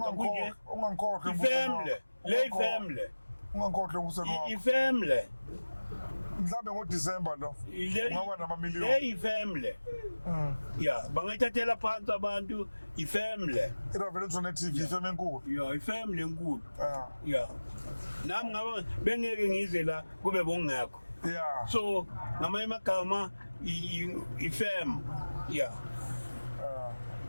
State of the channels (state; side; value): inverted; both; correlation -1.00